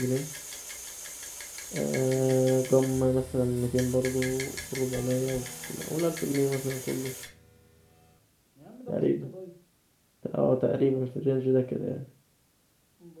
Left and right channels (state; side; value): identical; both; correlation 1.00